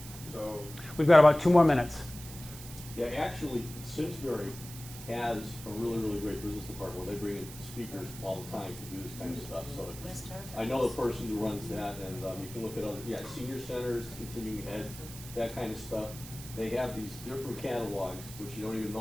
so. We've got about 2 more minutes. Yeah, actually, Simsbury has a really, really great business department where they bring in speakers all the time to do this kind of stuff. So I know the person who runs that, and you can look at other, senior centers, continuing ed, that kind of stuff. They have these different catalogs, which you don't even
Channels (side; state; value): right; noise; hiss, 14 dB below the sound